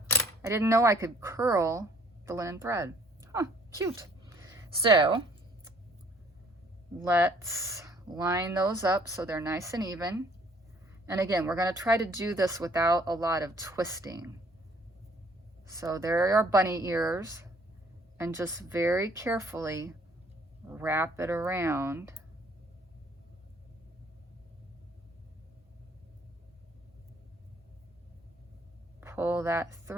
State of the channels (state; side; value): normal; both; correlation 0.59